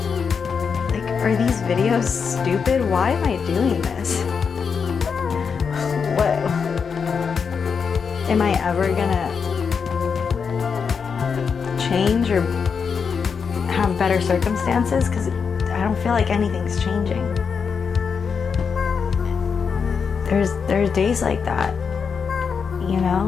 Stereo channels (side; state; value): right; quieter; 6.0 dB